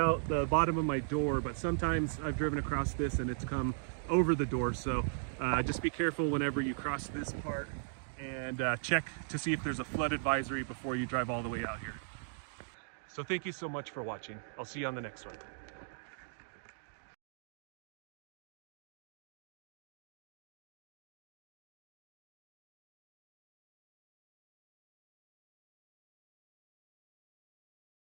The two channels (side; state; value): left; silent; digital silence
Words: the bottom of my door, but sometimes I've driven across this and it's come over the door. So just be careful whenever you cross this part, and check to see if there's a flood advisory before you drive all the way out here. So thank you so much for watching. I'll see you on the next one.